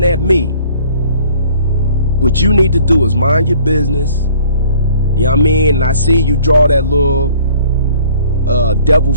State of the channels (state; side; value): inverted; both; correlation -0.55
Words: at me? What you need to do is mind your business. You know what I mean? And I see you draw that little devil